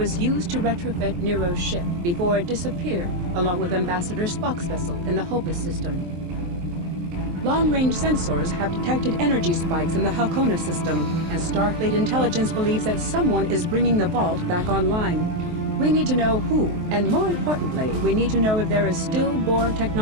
used to retrofit Nero's ship before it disappeared, along with Ambassador Spock's vessel in the Hobus system. Long-range sensors have detected energy spikes in the Halcona system, and Starfleet intelligence believes that someone is bringing the Vault back online. We need to know who, and more importantly, we need to know if there is still Borg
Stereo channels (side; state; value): left; late; 23 ms